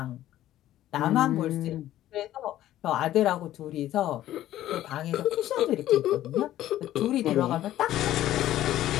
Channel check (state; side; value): quieter; right; 13.4 dB